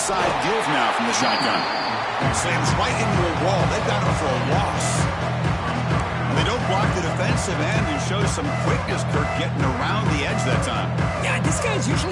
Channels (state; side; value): identical; both; correlation 1.00